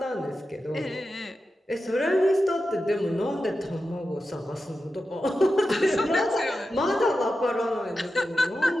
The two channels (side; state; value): both; normal; correlation 0.91